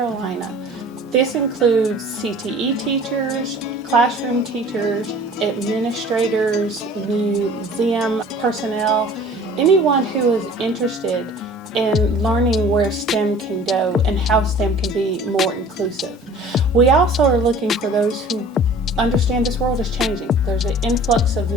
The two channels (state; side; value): normal; both; correlation 0.47